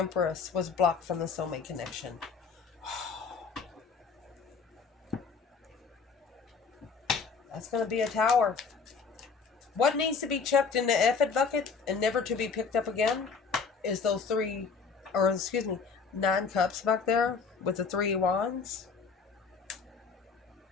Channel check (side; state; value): right; quieter; 5.2 dB